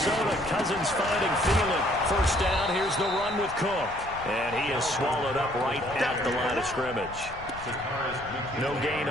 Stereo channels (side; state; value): left; noise; rumble, 16 dB below the sound